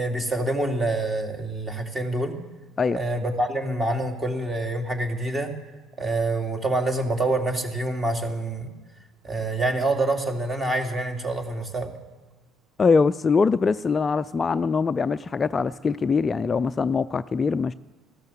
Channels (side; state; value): both; normal; correlation 0.79